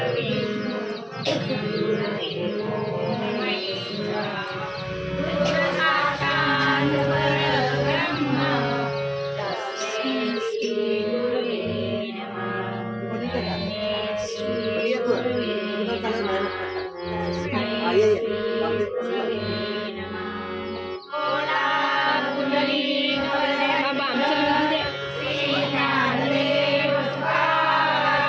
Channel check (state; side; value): identical; both; correlation 1.00